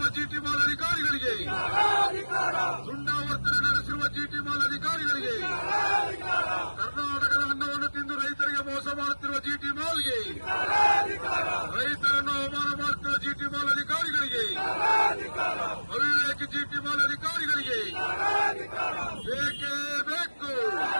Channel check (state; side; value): inverted; both; correlation -1.00